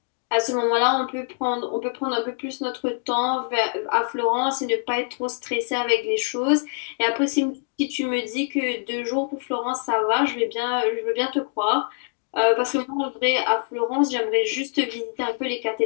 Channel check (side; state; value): right; silent; 62 dB below the other